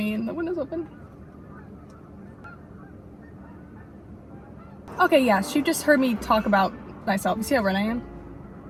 and the window's open. Okay, yeah, she just heard me talk about myself. You see how red I am?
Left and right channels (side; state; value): both; identical; correlation 1.00